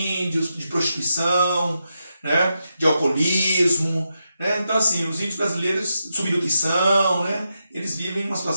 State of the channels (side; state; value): both; inverted; correlation -0.86